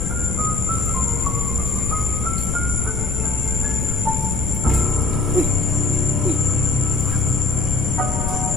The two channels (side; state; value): left; noise; rumble, 2 dB below the sound